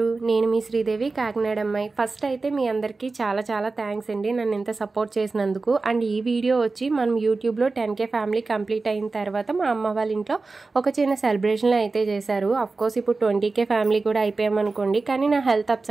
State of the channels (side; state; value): left; quieter; 3.8 dB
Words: నేను మీ శ్రీదేవి, కాకినాడ అమ్మాయి. ఫస్ట్ అయితే మీ అందరికీ చాలా చాలా థ్యాంక్స్ అండి నన్ను ఇంత సపోర్ట్ చేసినందుకు. అండ్ ఈ వీడియో వచ్చి మనం యూట్యూబ్లో 10K ఫ్యామిలీ కంప్లీట్ అయిన తర్వాత మా అమ్మ వాళ్ళ ఇంట్లో ఒక చిన్న సెలబ్రేషన్లు అయితే చేశారు. అఫ్కోర్స్ ఇప్పుడు 20K ఫ్యామిలీ కూడా అయిపోయామనుకోండి, కానీ నా హెల్త్